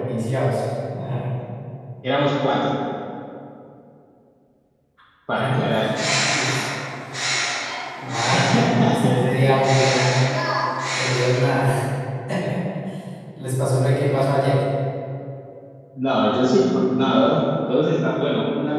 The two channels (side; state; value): both; identical; correlation 1.00